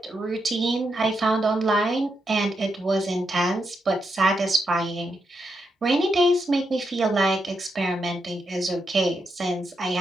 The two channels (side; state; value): both; normal; correlation 0.83